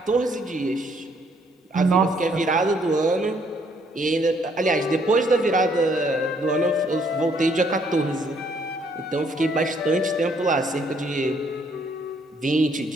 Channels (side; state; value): both; normal; correlation 0.67